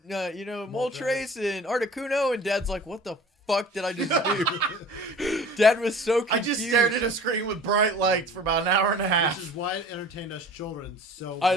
Moltres, and Articuno." And Dad's like, "What the fuck did I just do?" Dad was so confused. I just stared at a screen with bright lights for about an hour and a half. Which is why it entertained us children so I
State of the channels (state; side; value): normal; both; correlation 0.44